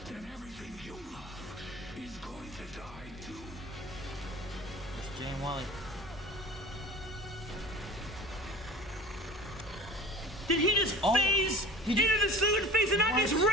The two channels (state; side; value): normal; both; correlation 0.40